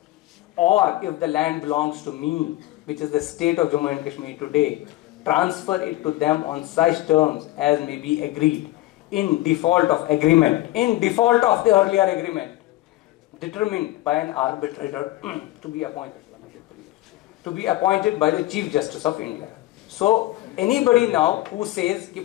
or if the land belongs to me, which is the state of Jammu and Kashmir today, transfer it to them on such terms as may be agreed in default of agreement, in default of the earlier agreement, determined by an arbitrator to be appointed by the Chief Justice of India. So anybody now who says that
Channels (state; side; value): quieter; right; 16.9 dB